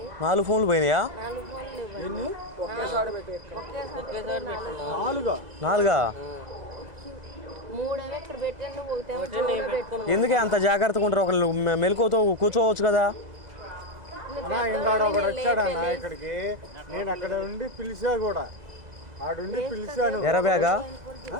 4 ఫోన్లు పోయినాయా? 4 ఫోన్లు ఎన్ని? ఒకేసారి నాలుగా? 3 ఇక్కడ పెట్టండి, ఒకటేమో ఎందుకే అంత జాగ్రత్తగా ఉంటారు? ఒకళ్ళు మెలకువతో కూర్చోవచ్చు కదా. ఒకడు వచ్చాడన్న ఇక్కడికి, నేను అక్కడ ఉండి పిలిచా కూడా, ఆడుండి పిలిచాను. ఎర్రబ్యాగా?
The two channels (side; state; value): left; late; 2.0 ms